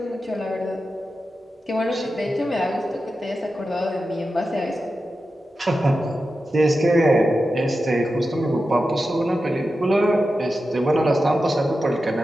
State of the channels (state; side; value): normal; both; correlation 0.91